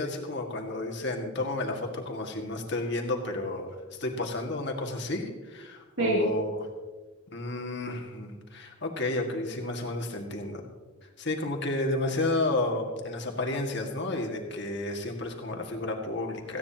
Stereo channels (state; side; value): normal; both; correlation 0.12